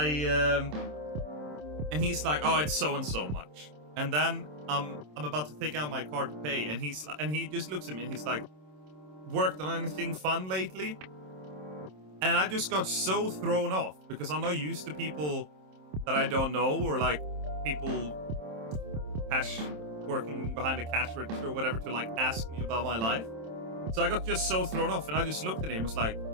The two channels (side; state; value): left; late; 27 ms